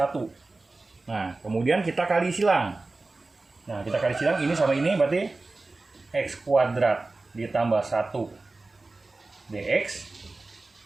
Nah, kemudian kita kali silang. Nah, kita kali silang ini sama ini berarti x kuadrat ditambah 1 dx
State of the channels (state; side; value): quieter; left; 3.4 dB